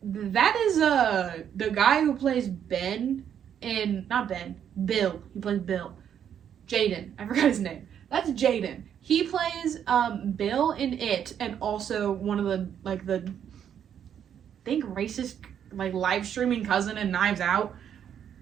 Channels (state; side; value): quieter; left; 9.0 dB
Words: the guy who plays Bill. He plays Bill. Jaden. I forgot his name. That's Jaden. He plays Bill in It, and also one of the I think racist live streaming cousin in Knives Out.